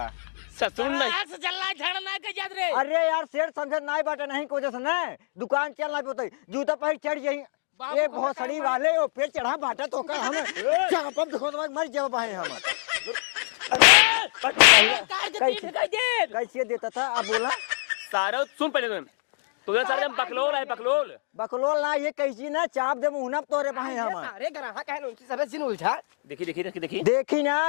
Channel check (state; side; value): silent; right; digital silence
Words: ससुर नहीं से चलना झड़ना के याद रे। अरे यार शेर समझ नहीं बाटे नहीं को जैसे नहीं दुकान चलना पे जूता पहिर चढ़ जाई ए भोसड़ी वाले ओ पे चढ़ा बाटा तो का हम चापम देखो तो मर जाओ भाई हम कैसे देता था अब बोला सारा सुन पहले तुम सारे बकलोल है बकलोल ना ये कैसी ना चाप दे मुंह तोरे भाई हम अरे ग्राहक कहे उनकी सरस सिन उलझा देखी ना